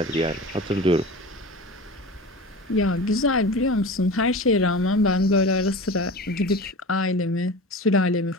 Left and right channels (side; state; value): both; normal; correlation 0.33